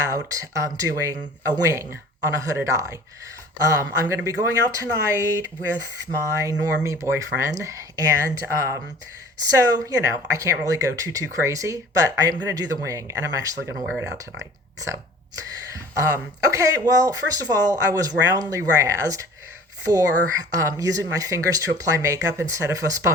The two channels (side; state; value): both; normal; correlation 0.46